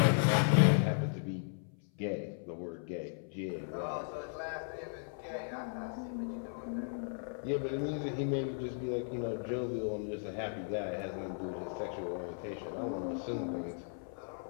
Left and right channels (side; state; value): right; silent; 54 dB below the other